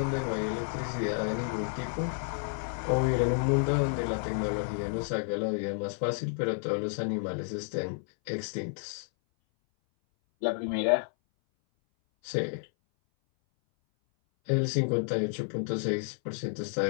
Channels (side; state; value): right; silent; 57 dB below the other